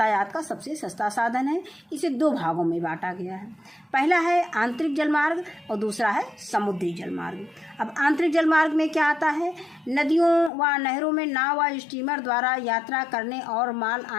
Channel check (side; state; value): right; drops out; at 10.5 s